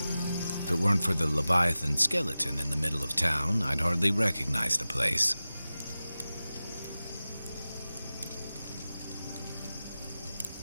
If it weren't for the Leviathan skeleton in the middle of town, I'd hardly recognize the place.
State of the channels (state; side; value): inverted; both; correlation -0.95